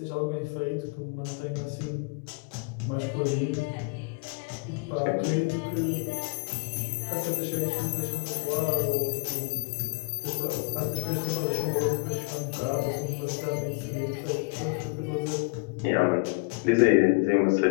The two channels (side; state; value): right; quieter; 31.1 dB